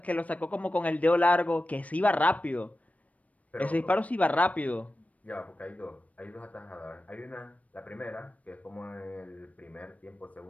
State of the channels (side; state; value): right; late; 0.068 ms